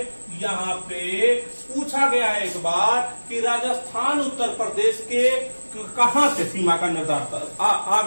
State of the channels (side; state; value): both; inverted; correlation -1.00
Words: यहाँ पे पूछा गया है एक बार कि राजस्थान उत्तर प्रदेश के कहां से सीमा का निर्धारण,